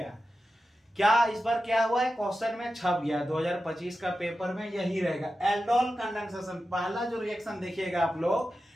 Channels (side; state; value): both; normal; correlation 0.92